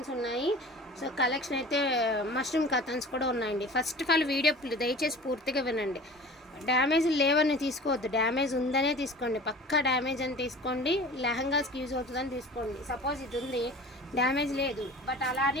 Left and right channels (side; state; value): both; normal; correlation 0.41